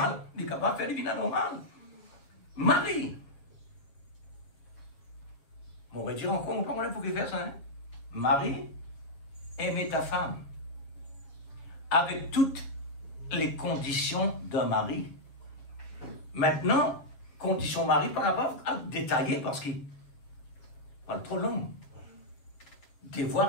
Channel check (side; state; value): right; late; 7.2 ms